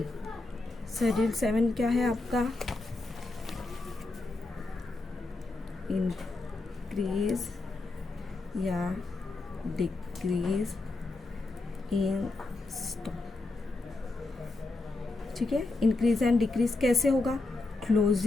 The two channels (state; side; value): quieter; right; 3.2 dB